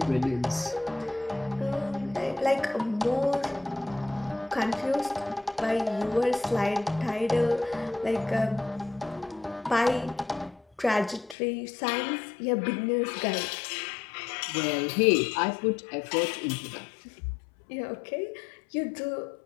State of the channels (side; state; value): right; drops out; at 11.4 s